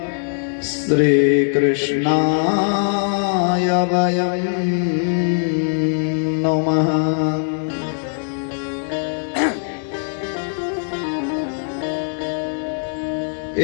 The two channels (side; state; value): right; silent; 65 dB below the other